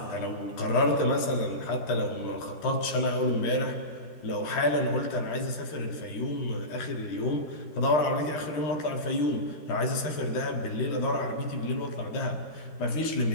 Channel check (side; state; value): right; late; 13 ms